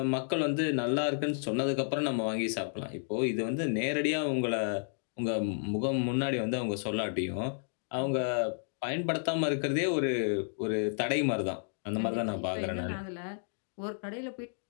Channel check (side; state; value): right; silent; digital silence